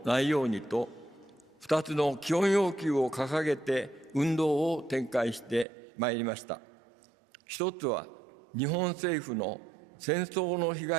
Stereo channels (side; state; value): left; drops out; at 5.7 s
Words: ないようにと、2つの基本要求を掲げて運動を展開してまいりました。一つは、日本政府の戦争の被